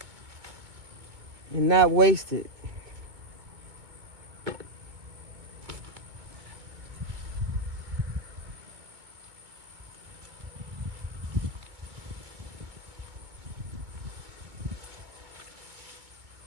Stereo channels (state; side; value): late; left; 2.2 ms